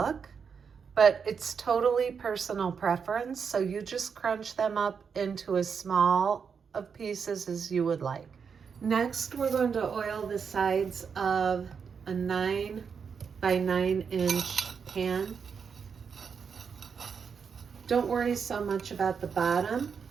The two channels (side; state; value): left; quieter; 6.3 dB